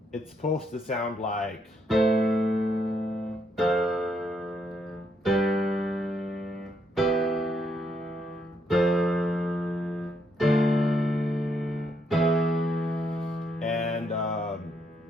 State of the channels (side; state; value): both; normal; correlation 0.75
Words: It's supposed to sound like